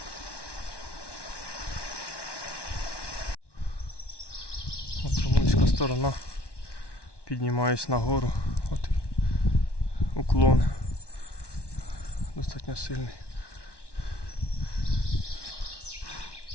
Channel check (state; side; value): late; right; 1.1 ms